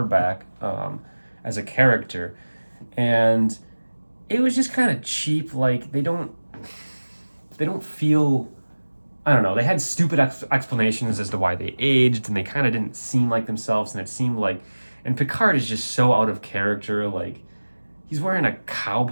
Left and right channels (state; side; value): inverted; both; correlation -1.00